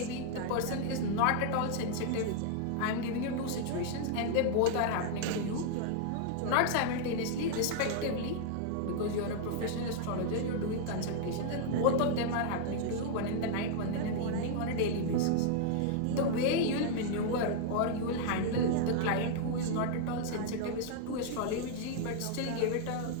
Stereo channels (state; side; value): different; both; correlation -0.01